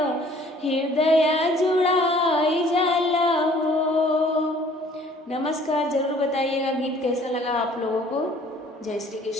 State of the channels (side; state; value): both; normal; correlation 0.55